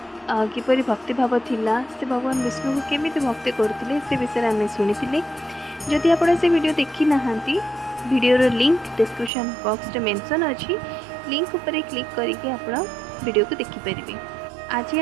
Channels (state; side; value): drops out; left; at 9.3 s